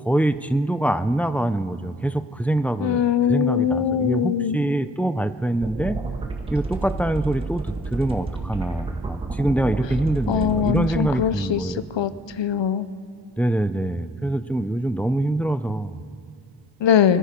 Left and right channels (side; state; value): both; normal; correlation 0.55